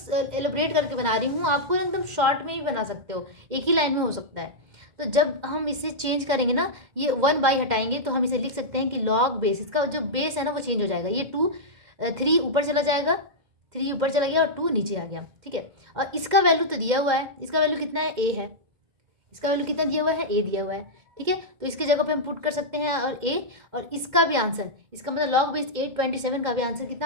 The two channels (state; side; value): late; left; 2.1 ms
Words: करके बना रही हूँ, आपको एकदम शॉर्ट में ही बना सकते हो, एक ही लाइन में हो सकता है। तो जब हम इसे चेंज करेंगे ना, ये 1/, हटाएंगे तो हम इसे लिख सकते हैं कि लॉग बेस, इसका जो बेस है ना वो चेंज हो जाएगा। ये 2 3 ऊपर चला जाएगा, 3 ऊपर चला गया और 2 नीचे आ गया, ठीक है। और इसका वैल्यू तो दिया हुआ है, इसका वैल्यू कितना है, ए है। इसका वैल्यू कितना दिया हुआ है, ए दिया हुआ है, ठीक है। तो इसकी जगह पे हम पुट कर सकते हैं और ए, और इसका भी आंसर, इसका मतलब लॉग बेस 827 का भी आंसर